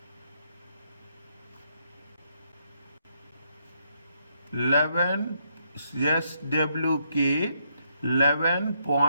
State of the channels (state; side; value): inverted; both; correlation -0.75